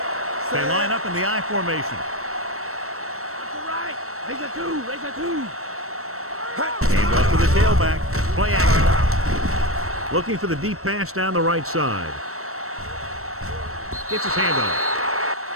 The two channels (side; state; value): left; late; 0.63 ms